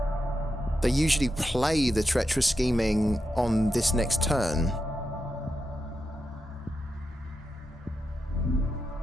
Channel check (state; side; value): normal; both; correlation 0.87